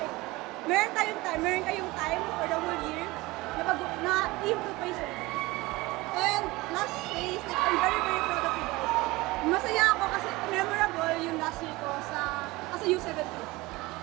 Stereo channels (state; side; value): quieter; left; 21.1 dB